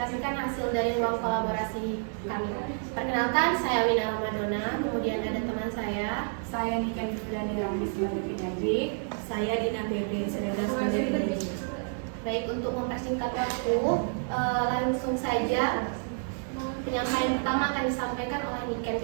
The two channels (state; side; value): silent; left; 56 dB below the other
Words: hasil dari ruang kolaborasi kami. Perkenalkan, saya Wina Ramadona, kemudian ada teman saya Nika Yudhani Ramli sebagai penyaji. Saya Dina Bebe Sereda sebagai penyaji. Baik, untuk mempersingkat waktu, langsung saja penyampaian pertama akan disampaikan oleh Niken